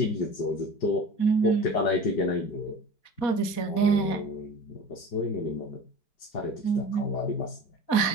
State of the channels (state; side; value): late; right; 4.2 ms